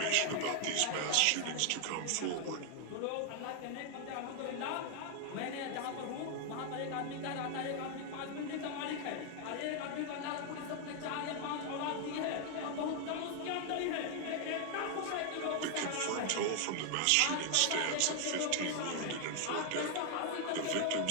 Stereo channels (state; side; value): different; both; correlation 0.00